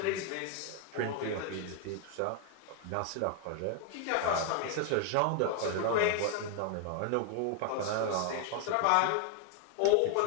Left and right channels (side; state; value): both; different; correlation 0.00